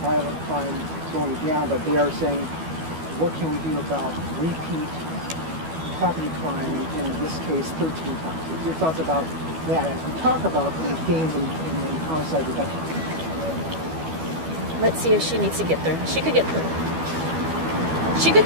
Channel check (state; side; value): late; left; 12 ms